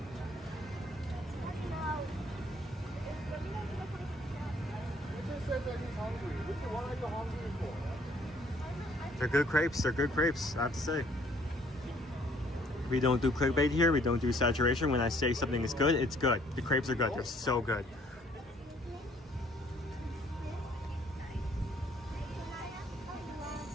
They're good crepes. They're good crepes, I have to say. We don't do clickbait here. We don't do saturation. When I say something is good, it's good. The crepes are good. They're so good.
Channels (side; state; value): both; normal; correlation 0.62